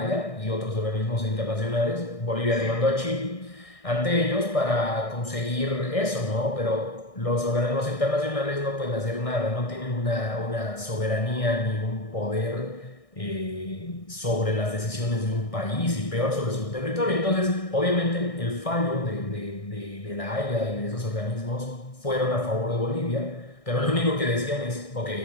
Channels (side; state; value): right; late; 1.6 ms